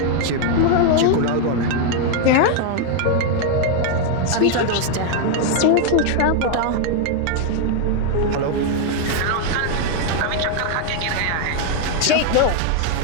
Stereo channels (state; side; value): different; both; correlation 0.00